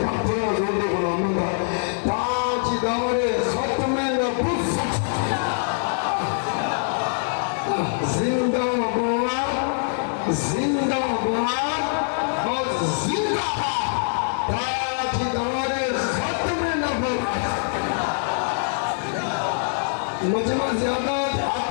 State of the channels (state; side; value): silent; right; digital silence